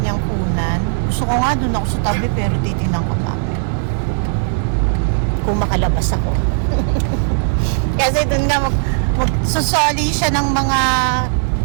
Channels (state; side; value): silent; left; digital silence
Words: niyang kunan. Gusto ko nga doon ako sa tabi pero titinan ko namin. Kung makalabas ako. Kasi doon nga magsusoli siya ng mga